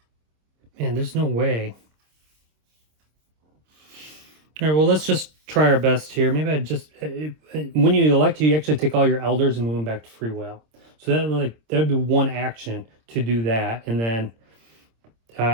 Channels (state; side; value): late; left; 26 ms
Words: Man, there's no way. All right, well, let's just try our best here. Maybe I just when you elect, you actually take all your elders and move them back to free will. So that would be one action to do that, and then